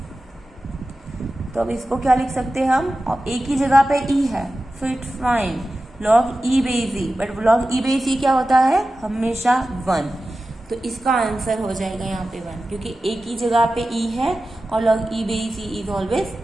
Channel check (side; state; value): both; normal; correlation 0.94